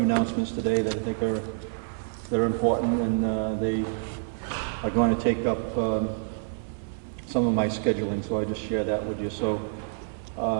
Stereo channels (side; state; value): left; silent; digital silence